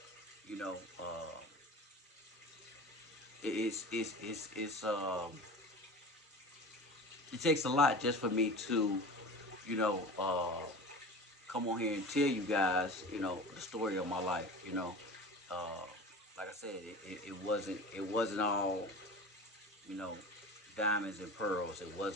You know, uh, it's it takes a lot just for me to, you know, uh, come on here and tell you guys, the story of my life. Uh, like I said, it wasn't all, you know, diamonds and pearls. It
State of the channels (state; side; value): normal; both; correlation 0.35